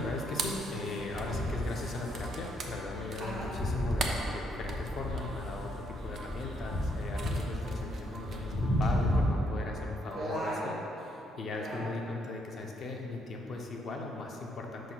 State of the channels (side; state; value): both; normal; correlation 0.73